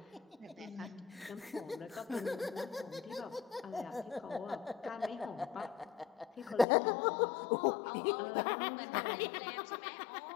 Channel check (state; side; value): drops out; right; at 6.7 s